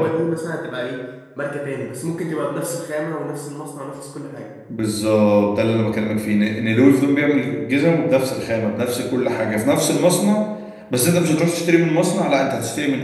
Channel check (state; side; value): identical; both; correlation 1.00